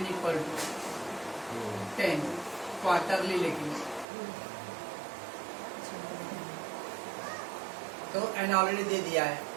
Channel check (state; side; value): drops out; left; at 4.0 s